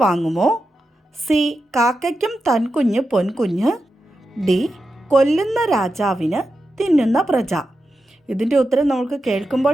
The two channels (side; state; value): both; normal; correlation 0.89